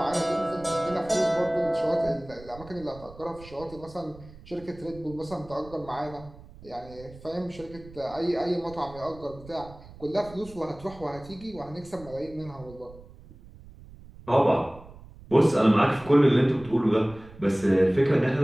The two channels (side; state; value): right; noise; rumble, 19 dB below the sound